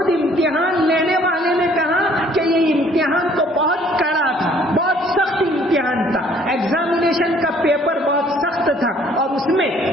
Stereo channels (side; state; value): both; normal; correlation 0.59